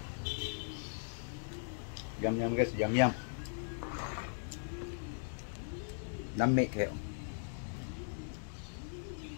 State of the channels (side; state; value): right; silent; digital silence